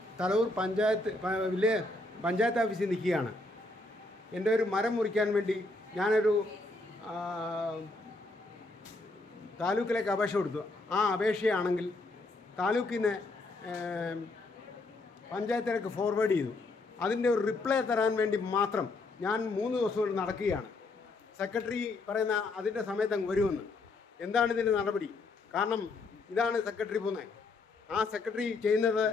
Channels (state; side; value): quieter; right; 3.2 dB